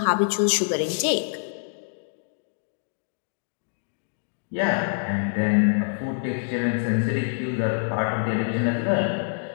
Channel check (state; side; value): silent; right; digital silence